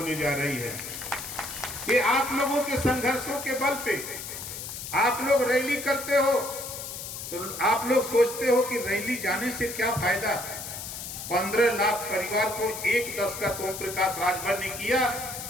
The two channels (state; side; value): noise; left; hiss, 8 dB below the sound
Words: जा रही है। ये आप लोगों के संघर्षों के बल पे आप लोग रैली करते हो तो आप लोग सोचते हो कि रैली जाने से क्या फायदा। 15 लाख परिवार को 1/10 का तो प्रकाश राजभर ने किया।